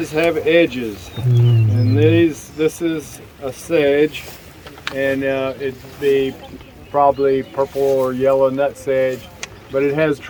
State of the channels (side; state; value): both; identical; correlation 1.00